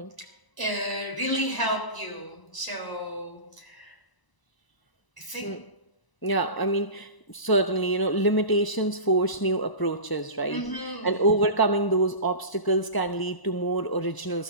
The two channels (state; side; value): late; right; 1.0 ms